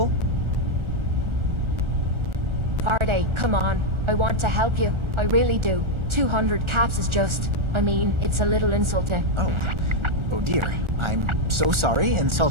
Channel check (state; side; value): late; left; 1.4 ms